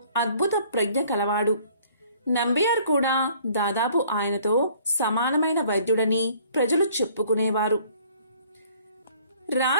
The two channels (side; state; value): both; inverted; correlation -0.57